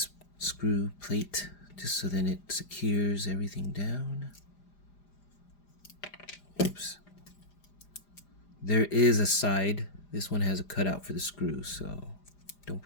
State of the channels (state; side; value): late; right; 4.9 ms